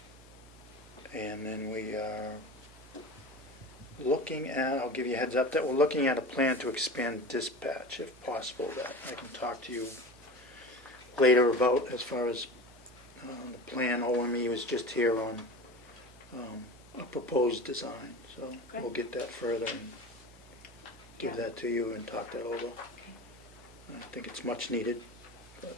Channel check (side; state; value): both; normal; correlation 0.32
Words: And then we are looking at, I'll give you a heads up, that we're looking at a plan to expand dispatch if possible, that I can talk to you later about as far as the plan. OME was just here on a proposed design, so we'll get that further and give that to you and talk that over. I think it's much needed.